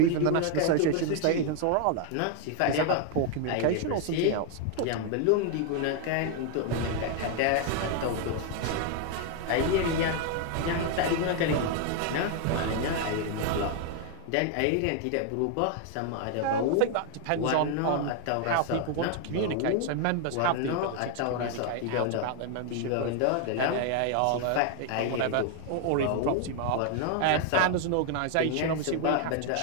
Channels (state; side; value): different; both; correlation 0.00